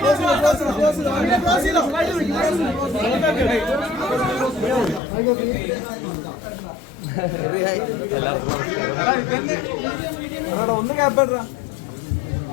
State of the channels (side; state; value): right; drops out; at 5.0 s